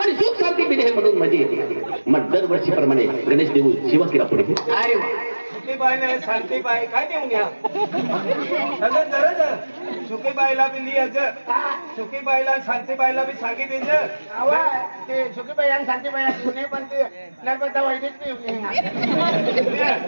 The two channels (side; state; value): both; inverted; correlation -1.00